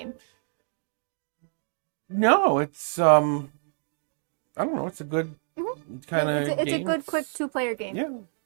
No, it's I don't know. It's a good kind of It's game. a good, quick 2-player game. Yeah,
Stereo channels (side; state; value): left; silent; digital silence